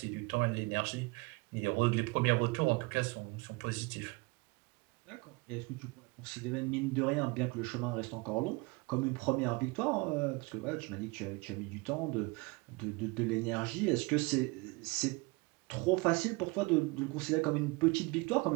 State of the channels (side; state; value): left; quieter; 26.4 dB